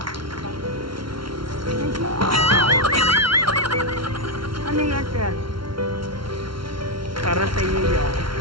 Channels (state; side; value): late; left; 0.74 ms